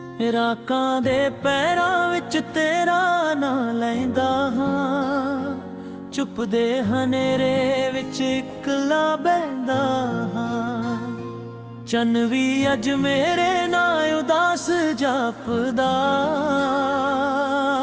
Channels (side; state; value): both; identical; correlation 1.00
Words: ਰਾਕਾਂ ਦੇ ਪੈਰਾਂ ਵਿੱਚ ਤੇਰਾ ਨਾਂ ਲੈਂਦਾ ਹਾਂ, ਚੁੱਪ ਦੇ ਹਨੇਰੇ ਵਿੱਚ ਇਕੱਲਾ ਬਹਿੰਦਾ ਹਾਂ। ਚੰਨ ਵੀ ਅੱਜ ਮੇਰੇ ਨਾਂ ਉਦਾਸ ਜਾਪਦਾ,